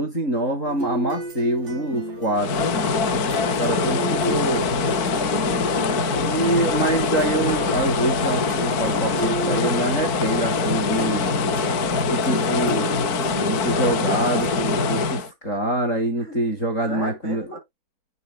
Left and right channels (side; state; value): right; late; 4.5 ms